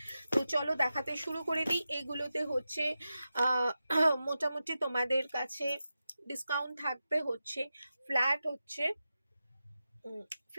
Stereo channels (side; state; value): both; inverted; correlation -0.91